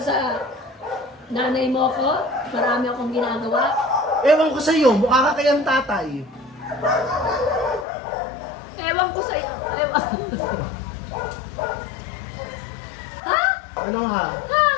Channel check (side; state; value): right; drops out; at 7.9 s